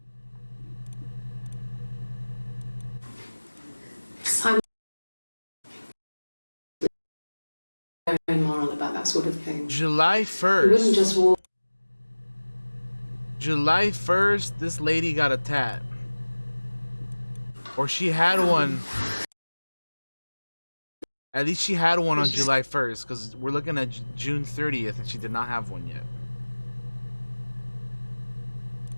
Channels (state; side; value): inverted; both; correlation -1.00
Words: I'm very moral about that sort of thing. July You wouldn't 1st. just walk. July 1st, this lady got a tat. Or she had one. At least she had one on July 1st, because we're looking at June 30th and she did not have one yet.